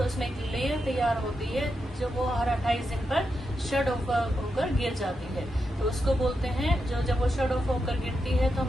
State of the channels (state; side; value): normal; both; correlation 0.86